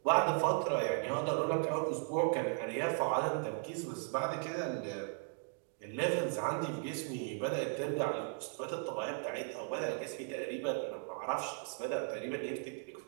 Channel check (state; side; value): silent; left; 53 dB below the other